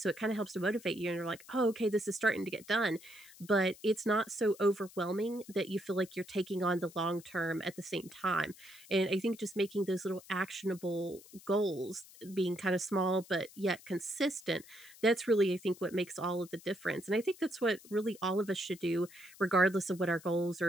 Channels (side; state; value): left; noise; hiss, 21 dB below the sound